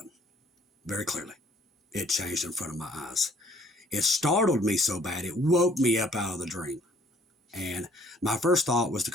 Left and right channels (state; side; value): normal; both; correlation 0.61